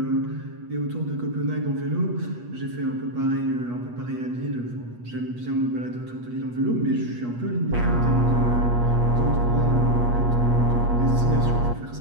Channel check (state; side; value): late; left; 8.3 ms